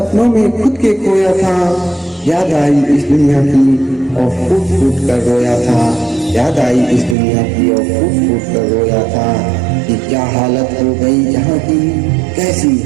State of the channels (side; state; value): left; drops out; at 7.2 s